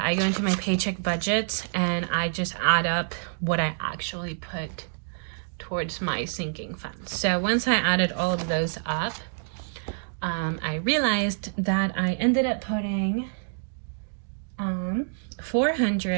I go into my paycheck budgets and I just add up what I actually put towards my sinking funds. So once I added all of those up, I realized that I ended up putting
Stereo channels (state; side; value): silent; left; digital silence